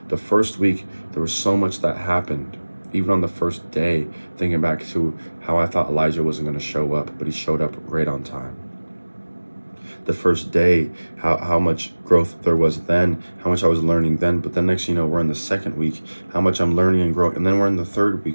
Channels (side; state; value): both; inverted; correlation -1.00